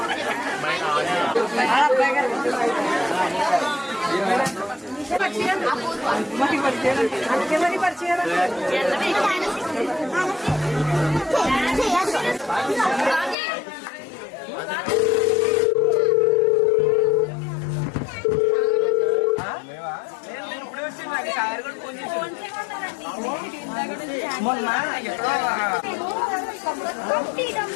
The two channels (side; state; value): right; drops out; at 13.4 s